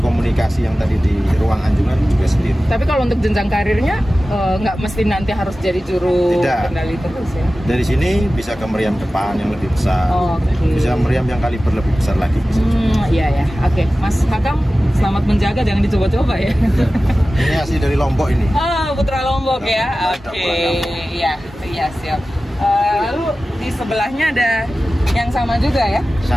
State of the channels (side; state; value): both; normal; correlation 0.95